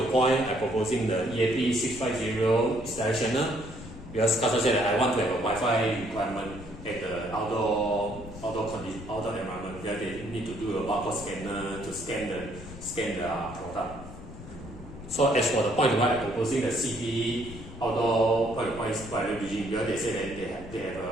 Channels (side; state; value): left; noise; rumble, 14 dB below the sound